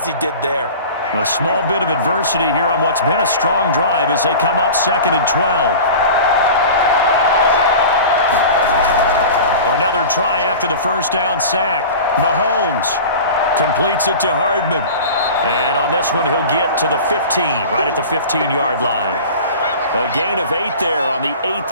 he did there. A small bit of adversity here on what's been a strong drive as they come up second and 12. Another try after the first down sack. Mahomes completes it to Hardman. And on this one, he'll get to the 15, right at the 15-yard line. A gain of 8 there on the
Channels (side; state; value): both; inverted; correlation -0.36